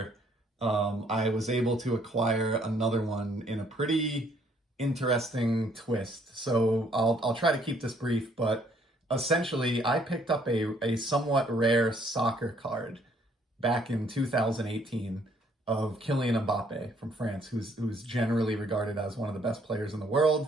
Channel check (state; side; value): normal; both; correlation 0.65